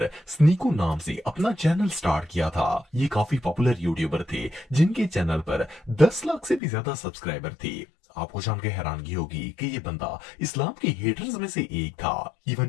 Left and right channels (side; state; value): right; drops out; at 6.6 s